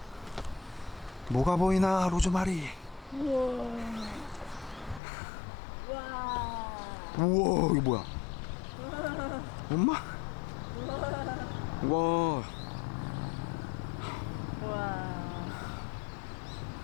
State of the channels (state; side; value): drops out; right; at 5.0 s